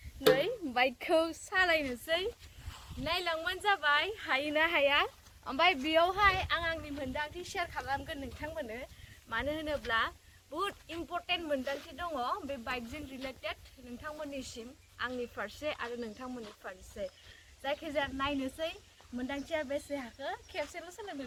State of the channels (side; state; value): both; identical; correlation 1.00